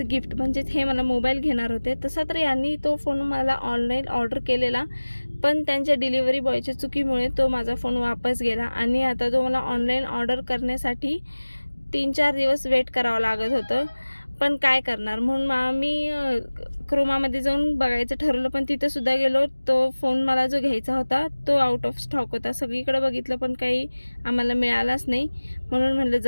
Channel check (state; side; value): inverted; both; correlation -1.00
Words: गिफ्ट, म्हणजेच हे मला मोबाईल घेणार होते. तसा तर यांनी तो फोन मला ऑनलाईन ऑर्डर केलेला, पण त्यांच्या डिलिव्हरी बॉयच्या चुकीमुळे तो माझा फोन वापस गेला आणि आता तो मला ऑनलाईन ऑर्डर करण्यासाठी 3-4 दिवस वेट करावं लागत होतं. पण काय करणार, म्हणून आम्ही क्रोमामध्ये जाऊन बघायचं ठरवलं, पण तिथंसुद्धा गेलो. तो फोन मला जो घ्यायचा होता तो आउट ऑफ स्टॉक होता. सगळीकडे बघितलं पण काही आम्हाला मिळालाच नाही. म्हणून म्हटलं